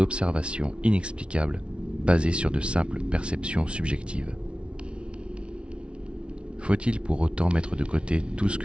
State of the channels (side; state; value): left; late; 0.059 ms